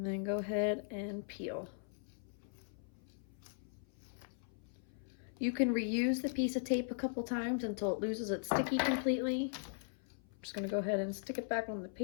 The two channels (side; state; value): right; silent; 52 dB below the other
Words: then go ahead and peel. You can reuse the piece of tape a couple times until it loses its sticky completely. I'm just gonna go ahead and stick it back on the